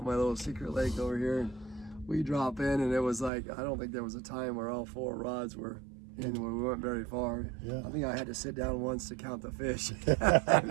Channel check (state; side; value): drops out; left; at 3.3 s